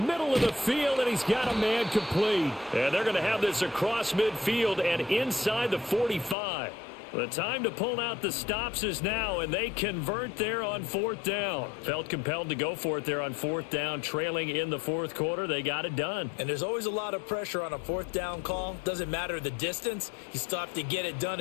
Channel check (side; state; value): right; drops out; at 6.4 s